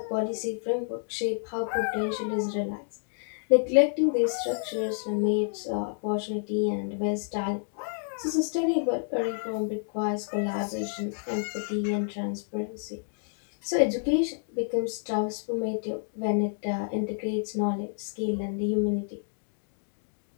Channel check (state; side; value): silent; right; digital silence